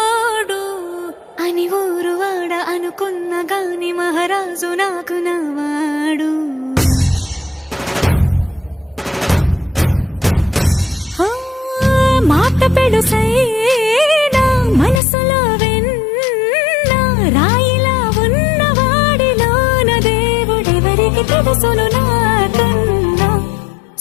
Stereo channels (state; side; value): drops out; right; at 15.0 s